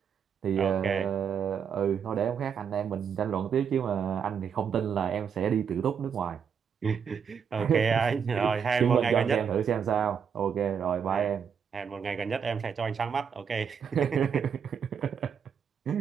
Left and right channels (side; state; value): left; quieter; 7.1 dB